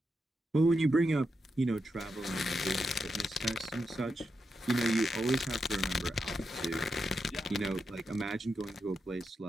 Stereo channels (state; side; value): normal; both; correlation 0.86